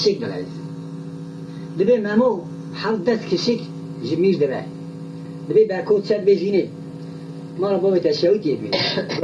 دلایز دبی مامو حال دست کشک جمیر دبی برکوت شد بزینه ما را بابت تشویقی بید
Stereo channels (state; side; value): identical; both; correlation 1.00